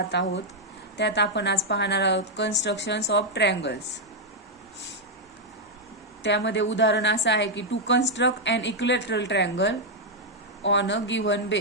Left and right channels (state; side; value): normal; both; correlation -0.01